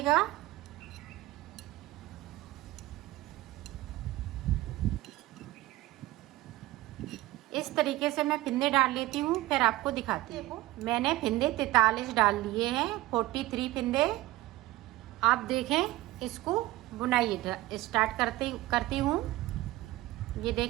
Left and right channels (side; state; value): left; quieter; 17.7 dB